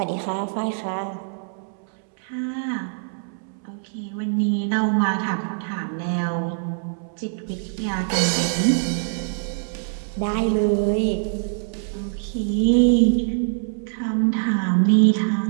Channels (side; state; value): left; silent; 63 dB below the other